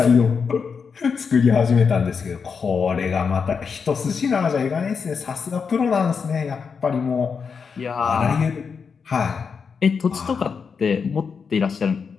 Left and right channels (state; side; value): quieter; right; 5.8 dB